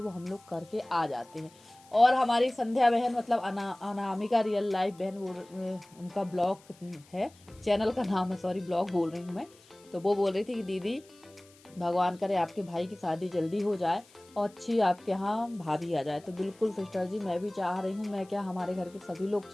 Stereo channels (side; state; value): left; noise; hiss, 27 dB below the sound